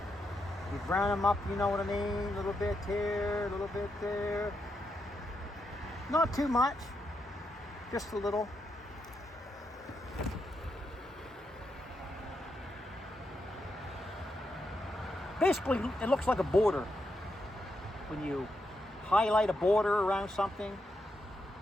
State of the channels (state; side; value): normal; both; correlation 0.82